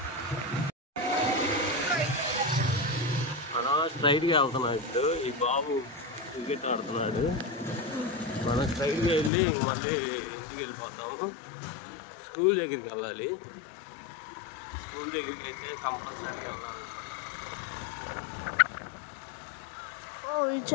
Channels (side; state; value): right; drops out; at 9.3 s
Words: మనం స్ట్రైట్గా వెళ్తున్నాం. ఇప్పుడు ఈ బాబు క్రికెట్ ఆడుతున్నాడు. మనం స్ట్రైట్గా వెళ్ళి మళ్ళీ ఇంటికి వెళ్ళిపోతాము. స్కూల్ దగ్గరికి వెళ్ళాలి. స్కూల్ దగ్గరికి అయితే కంపల్సరీ వెళ్ళాలి. ఈ